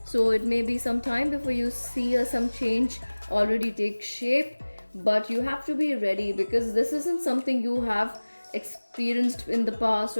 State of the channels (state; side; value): inverted; both; correlation -1.00